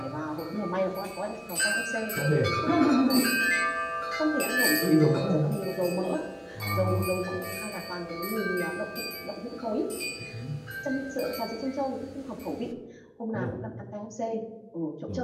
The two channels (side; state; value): both; identical; correlation 1.00